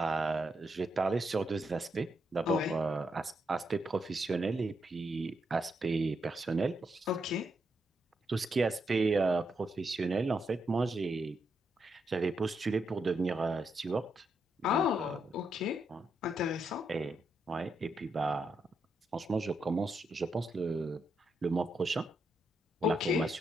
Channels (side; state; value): both; normal; correlation 0.81